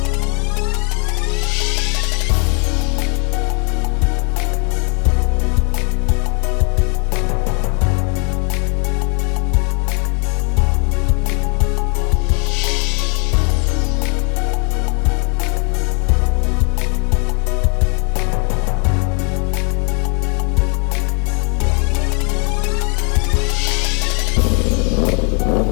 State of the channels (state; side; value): quieter; right; 36.4 dB